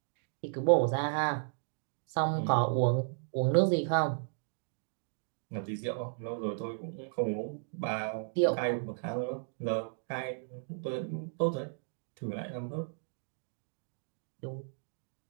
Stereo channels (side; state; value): left; silent; digital silence